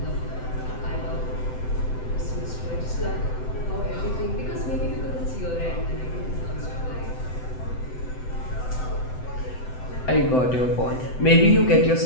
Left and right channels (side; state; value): right; late; 7.9 ms